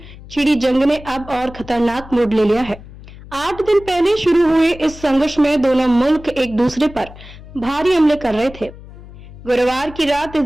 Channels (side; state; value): left; noise; hum, 18 dB below the sound